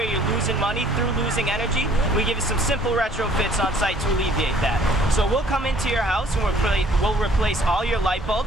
you're losing money through losing energy. We give you some simple retrofits on site to alleviate that. So we'll come into your house and we'll replace all your light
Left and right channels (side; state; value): both; normal; correlation 0.58